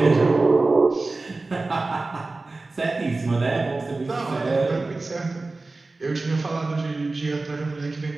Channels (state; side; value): quieter; left; 3.4 dB